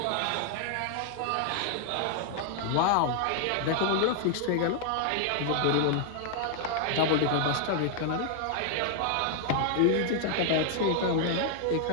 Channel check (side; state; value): both; different; correlation 0.00